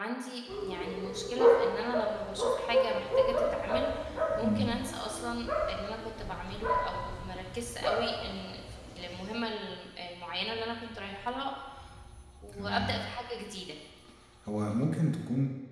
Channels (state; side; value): identical; both; correlation 1.00